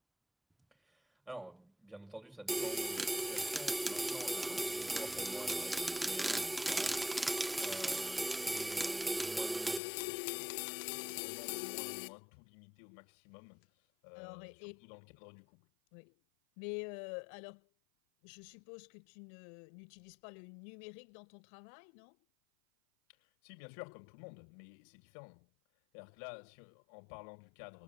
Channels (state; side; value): drops out; right; at 9.8 s